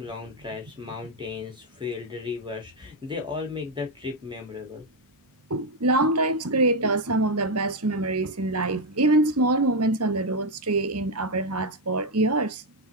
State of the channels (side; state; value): both; normal; correlation 0.03